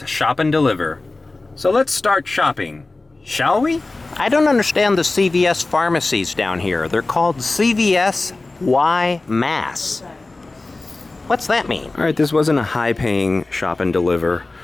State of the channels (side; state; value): right; quieter; 3.2 dB